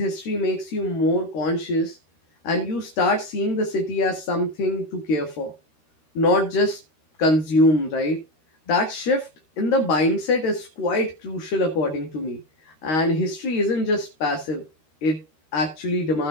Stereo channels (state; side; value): late; right; 13 ms